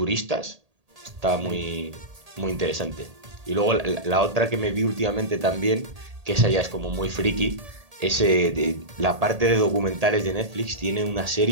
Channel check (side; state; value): left; late; 1.8 ms